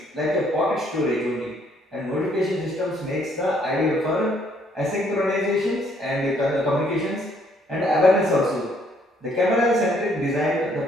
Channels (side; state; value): both; normal; correlation 0.66